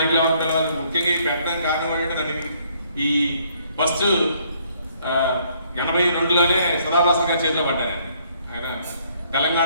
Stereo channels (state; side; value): inverted; both; correlation -0.66